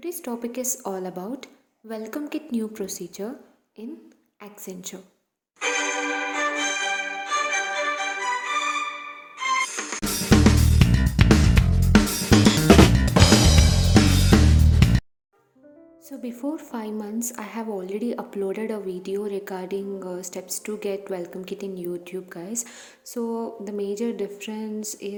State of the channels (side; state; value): both; identical; correlation 1.00